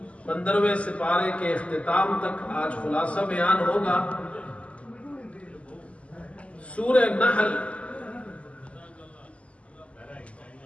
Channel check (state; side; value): late; right; 0.062 ms